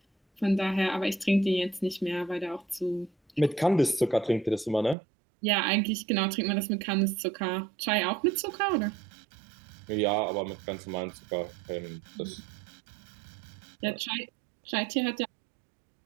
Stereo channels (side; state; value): left; drops out; at 5.0 s